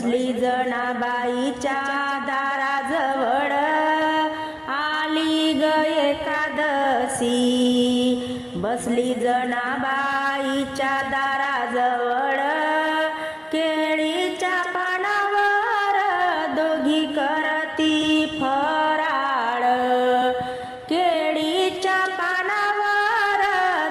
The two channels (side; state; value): both; identical; correlation 1.00